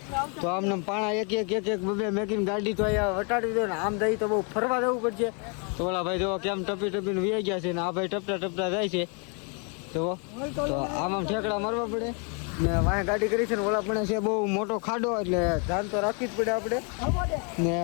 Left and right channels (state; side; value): quieter; right; 36.5 dB